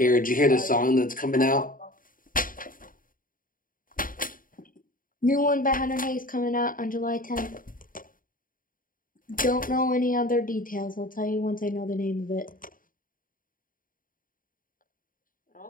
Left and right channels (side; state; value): right; late; 0.40 ms